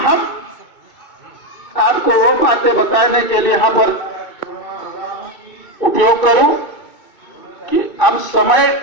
आपको वो बातें बताने के लिए यहाँ पर उपयोग करूं कि अब समय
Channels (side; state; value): right; late; 2.2 ms